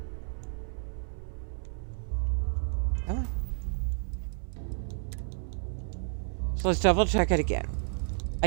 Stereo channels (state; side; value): silent; left; 57 dB below the other